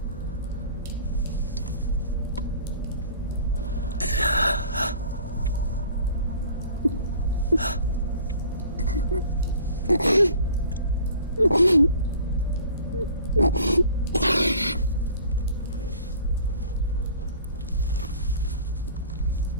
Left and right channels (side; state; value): both; inverted; correlation -0.47